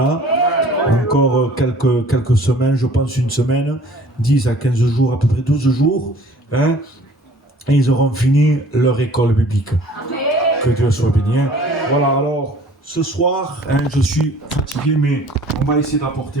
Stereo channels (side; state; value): both; normal; correlation 0.51